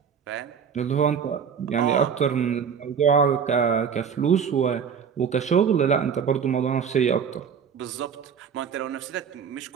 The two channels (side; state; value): left; quieter; 7.1 dB